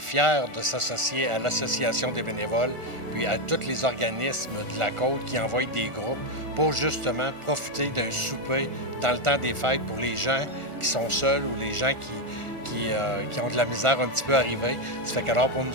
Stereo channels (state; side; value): late; left; 1.4 ms